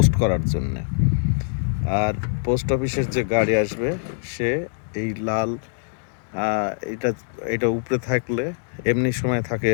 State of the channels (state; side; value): silent; right; digital silence